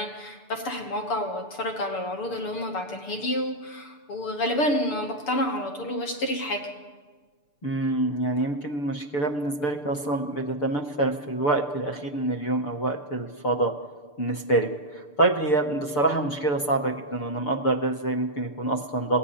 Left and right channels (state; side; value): late; right; 6.8 ms